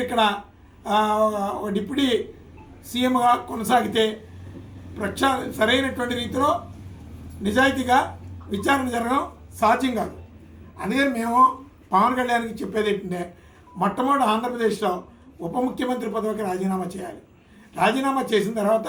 ఇక్కడ ఒక డిప్యూటీ సీఎంగా కొనసాగితే సరైనటువంటి రీతిలో నిజాయితీగా విచారణ జరగడం సాధ్యం కాదు. అందుకని మేము పవన్ కళ్యాణ్కి చెప్పేది ఏంటంటే మొట్టమొదటి ఆంధ్రప్రదేశ్లో ఉప ముఖ్యమంత్రి పదవికి రాజీనామా చేయాలి. రాజీనామా చేసిన తర్వాత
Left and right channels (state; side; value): identical; both; correlation 1.00